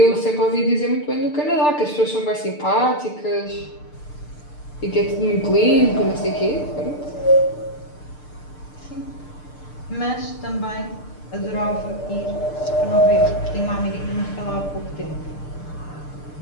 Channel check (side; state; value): right; late; 6.7 ms